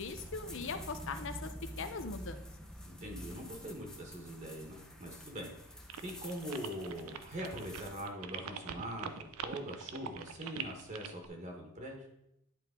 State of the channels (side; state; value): both; normal; correlation 0.29